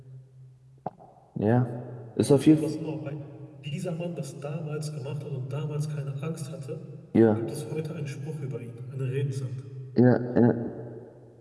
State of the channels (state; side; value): identical; both; correlation 1.00